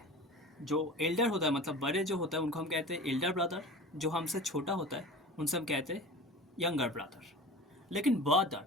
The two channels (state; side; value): normal; both; correlation 0.36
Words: जो एल्डर होता है, मतलब बड़े जो होता है उनको हम कहते हैं एल्डर ब्रदर। जो हमसे छोटा होता है उनसे हम कहते हैं यंगर ब्रदर। लेकिन ब्रदर,